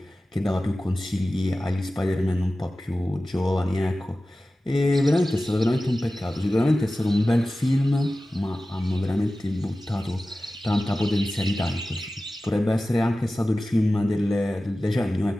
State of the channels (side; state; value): both; normal; correlation 0.95